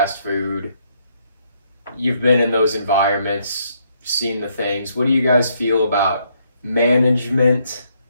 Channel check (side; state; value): both; inverted; correlation -0.72